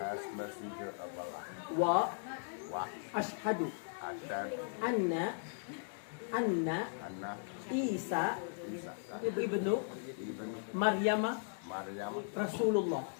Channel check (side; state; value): right; silent; digital silence